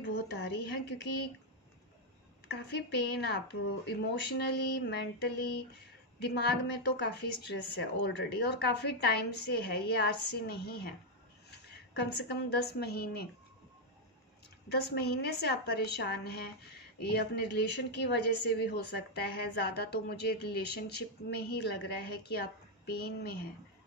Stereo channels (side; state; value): both; normal; correlation 0.00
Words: आ रही है, क्योंकि काफ़ी पेन, आप इमोशनली, मेंटली, दिमाग में तो काफ़ी स्ट्रेस है ऑलरेडी, और काफ़ी टाइम से है, ये आज से नहीं है। कम से कम 10 महीने से आप परेशान हैं। ये अपने रिलेशन की वजह से भी हो सकता है, ज़्यादा तो मुझे रिलेशनशिप में ही लग रहा है कि आप पेन में हैं।